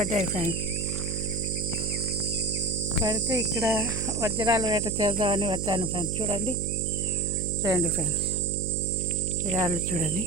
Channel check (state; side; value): noise; right; hum, 4 dB below the sound